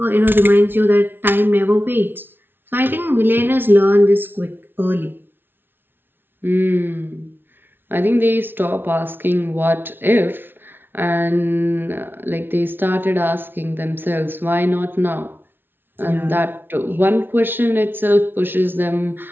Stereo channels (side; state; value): left; late; 0.10 ms